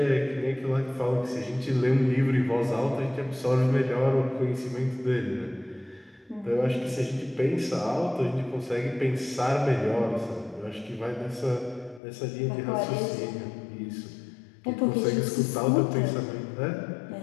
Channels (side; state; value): right; drops out; at 12.0 s